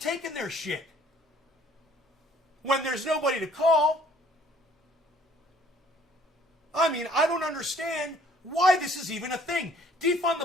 their shit. When there's nobody to call. I mean, I don't understand why this is even a thing. Defund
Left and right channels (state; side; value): normal; both; correlation 0.58